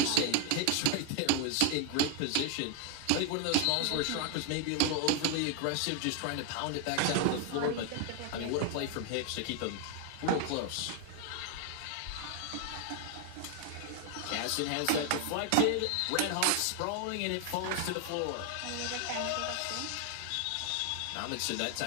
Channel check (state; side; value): different; both; correlation 0.00